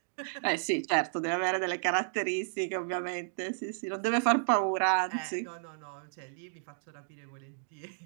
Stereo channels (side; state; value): left; silent; digital silence